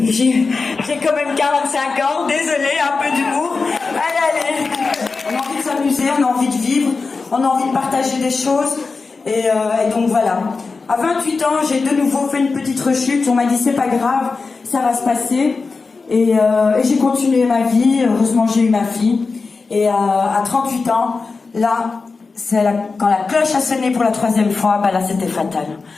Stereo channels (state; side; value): quieter; right; 4.3 dB